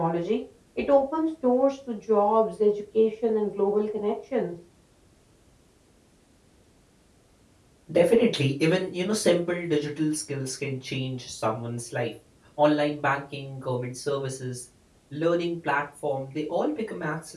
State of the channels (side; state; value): both; identical; correlation 1.00